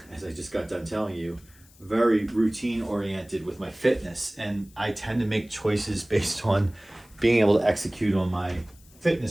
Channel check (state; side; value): noise; left; hiss, 27 dB below the sound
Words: as I just got done telling you, very routine oriented with my fitness. And I tend to make choices based on being able to execute on my